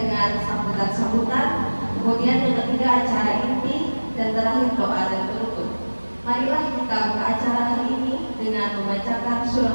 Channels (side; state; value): both; inverted; correlation -1.00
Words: dengan sambutan-sambutan, kemudian yang ketiga acara inti, dan terakhir doa dan penutup. Marilah kita buka acara hari ini dengan membacakan